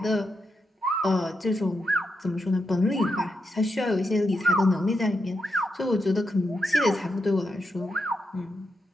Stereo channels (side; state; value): both; normal; correlation 0.84